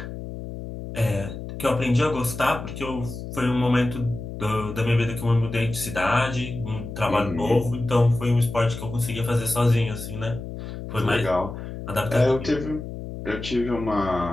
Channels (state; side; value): noise; left; hum, 9 dB below the sound